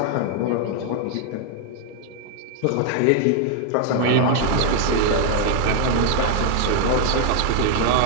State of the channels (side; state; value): both; different; correlation 0.00